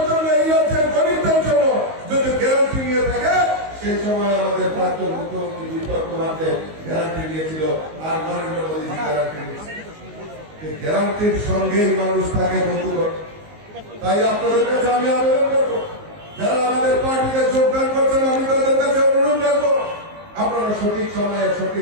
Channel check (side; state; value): left; late; 19 ms